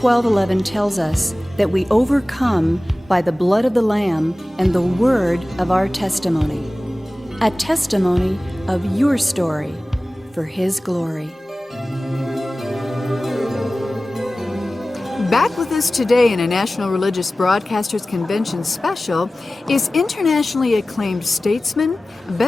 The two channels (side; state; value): both; normal; correlation 0.97